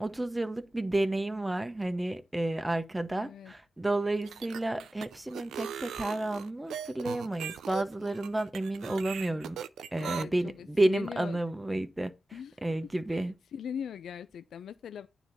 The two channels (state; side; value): normal; both; correlation 0.95